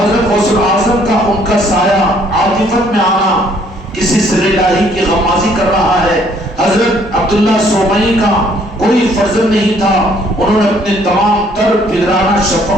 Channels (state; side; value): normal; both; correlation 0.63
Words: غوث الاعظم کا ان کا سایہ عاطفت میں آنا کسی سر الہی کی غمازی کر رہا ہے۔ حضرت عبداللہ سومئی کا کوئی فرزند نہیں تھا، انہوں نے اپنے تمام تر پدرانہ